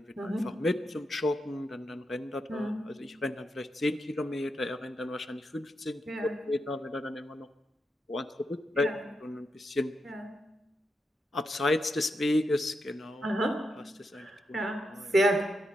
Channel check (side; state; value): both; normal; correlation 0.85